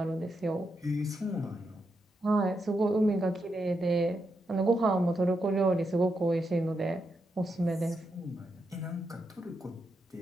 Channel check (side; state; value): both; normal; correlation 0.84